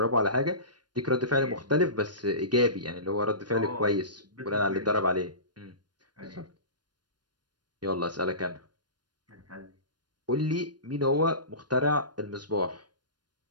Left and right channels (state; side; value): late; left; 0.70 ms